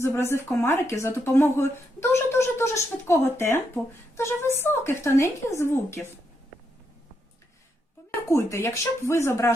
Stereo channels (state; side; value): normal; both; correlation 0.80